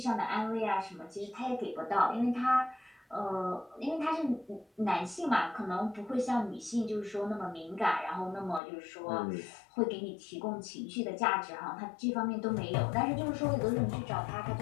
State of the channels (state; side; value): drops out; right; at 8.6 s